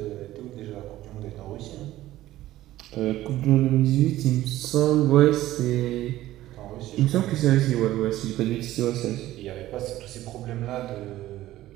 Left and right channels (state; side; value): quieter; left; 15.0 dB